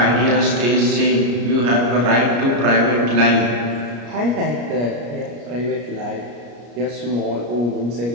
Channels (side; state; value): left; late; 33 ms